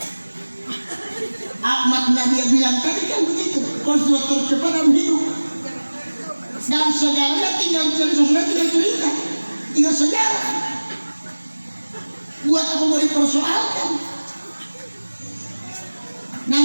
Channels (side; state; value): both; inverted; correlation -1.00